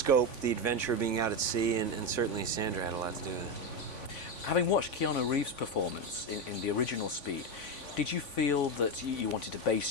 the adventure of being out at sea, and certainly Sandra had a lot to do with it. Having watched Keanu Reeves' performance in the original Speed, did you feel that you wanted to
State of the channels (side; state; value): right; late; 3.5 ms